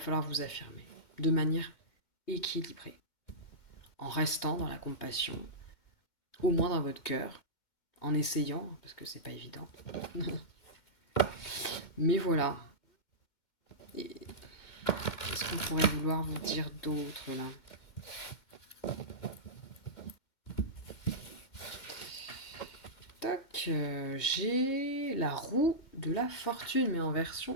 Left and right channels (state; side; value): late; right; 2.1 ms